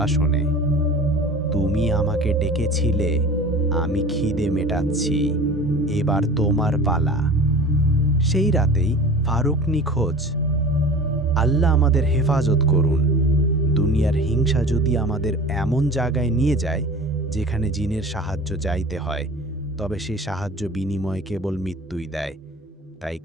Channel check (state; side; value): normal; both; correlation 0.39